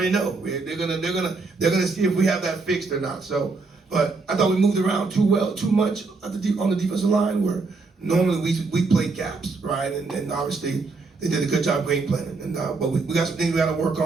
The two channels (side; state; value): left; quieter; 4.0 dB